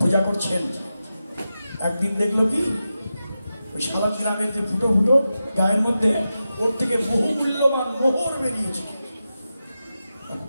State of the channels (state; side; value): inverted; both; correlation -0.91